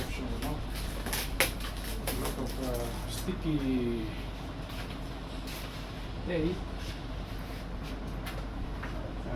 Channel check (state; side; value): identical; both; correlation 1.00